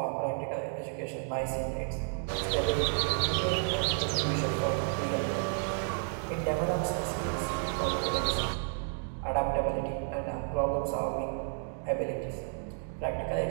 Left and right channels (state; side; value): silent; left; 57 dB below the other